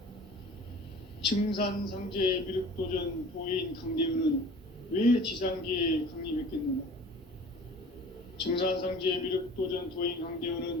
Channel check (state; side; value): normal; both; correlation 0.44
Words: 증산상제 미륵도전 도인 강대훈은 왜 지상계에 강림했겠는가? 증산상제 미륵도전 도인